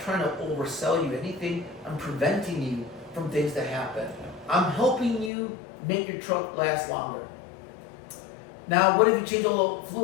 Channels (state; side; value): drops out; right; at 5.3 s